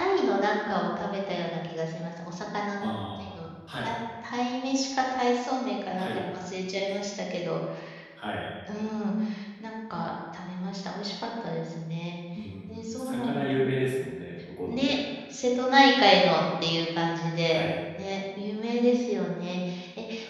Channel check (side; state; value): both; identical; correlation 1.00